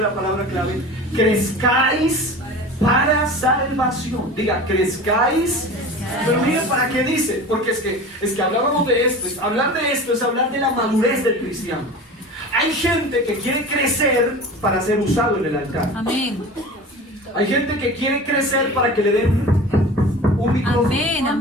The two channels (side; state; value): both; normal; correlation 0.35